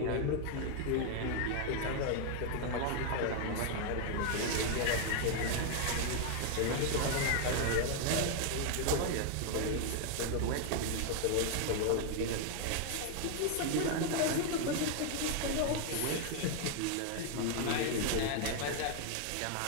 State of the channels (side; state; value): both; different; correlation 0.00